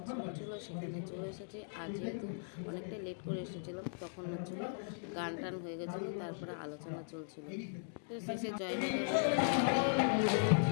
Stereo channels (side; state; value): right; silent; digital silence